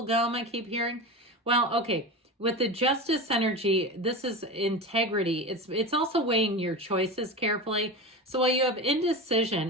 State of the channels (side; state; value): both; normal; correlation 0.26